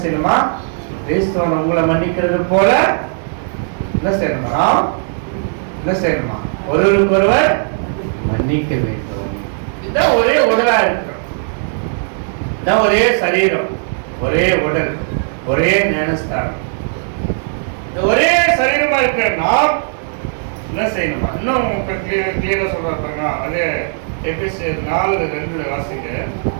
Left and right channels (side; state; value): left; silent; digital silence